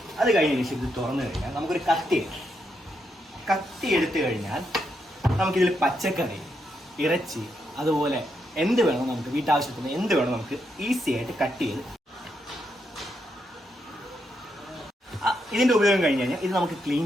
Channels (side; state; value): both; normal; correlation 0.81